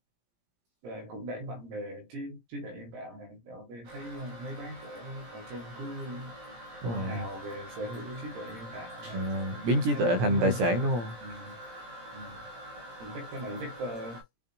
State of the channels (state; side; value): late; left; 17 ms